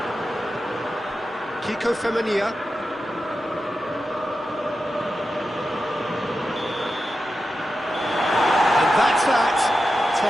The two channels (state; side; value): normal; both; correlation 0.91